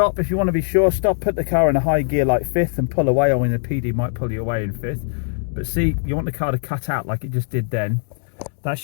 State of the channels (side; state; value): right; silent; digital silence